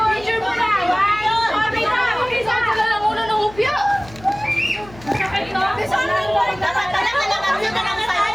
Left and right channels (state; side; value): noise; left; hum, 20 dB below the sound